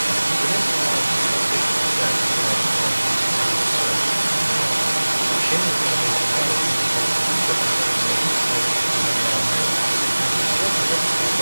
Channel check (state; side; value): inverted; both; correlation -1.00